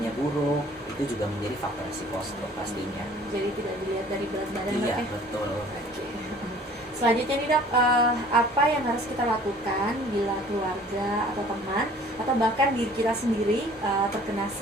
buruk, itu itu juga menjadi faktor risiko stroke pastinya. Jadi tidak dilihat dari berat badan, Iya, Dok, ya? betul. Oke. Selanjutnya nih, Dok, apa yang harus kita lakukan bila keluarga atau teman atau bahkan diri kita sendiri terkena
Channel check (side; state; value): both; normal; correlation 0.52